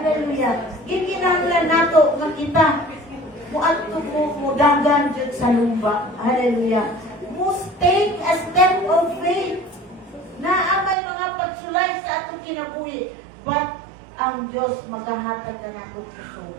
Gikinahanglan nato nga kita muadto mo dagan jud sa lumba. Hallelujah. Must take a step of faith na amay mga pagsulay sa atong kinabuhi. But ang Diyos maghahatag ka na akong puso.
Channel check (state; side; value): drops out; left; at 11.0 s